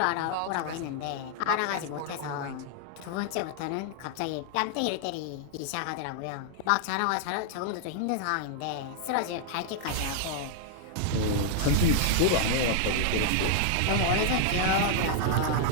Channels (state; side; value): different; both; correlation 0.00